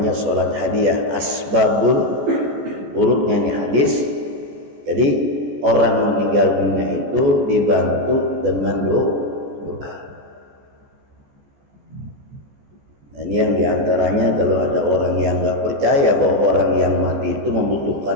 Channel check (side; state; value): left; late; 14 ms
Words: sholat hadiah. Asbabul urutnya ini hadis. Jadi orang meninggal dunia itu dibantu dengan doa. Nah, ini yang diantaranya kalau ada orang yang nggak percaya bahwa orang yang mati itu